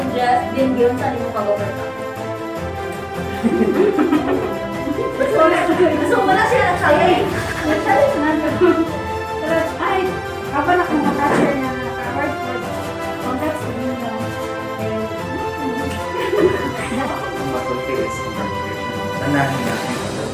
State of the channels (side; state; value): both; identical; correlation 1.00